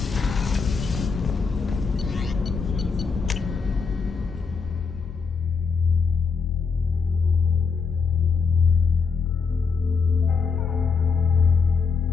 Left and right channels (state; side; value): quieter; right; 5.3 dB